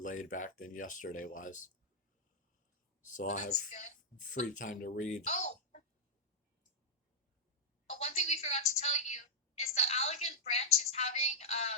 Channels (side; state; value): both; normal; correlation -0.06